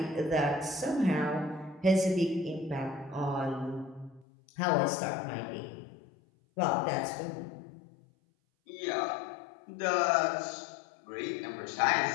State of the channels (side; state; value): right; drops out; at 4.2 s